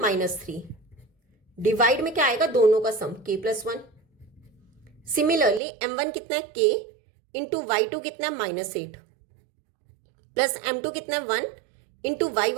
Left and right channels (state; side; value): drops out; left; at 5.6 s